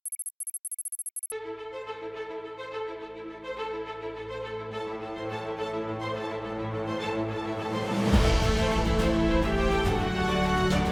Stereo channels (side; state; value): both; identical; correlation 1.00